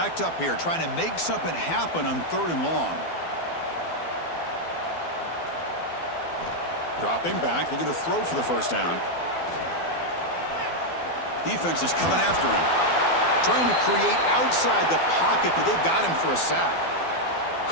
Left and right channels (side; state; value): right; late; 12 ms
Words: up here trying to make something happen on 3rd and long. Dropping back, looking to throw for the first down. Defense is coming after him. Trying to create outside the pocket, but they've got him for a sack.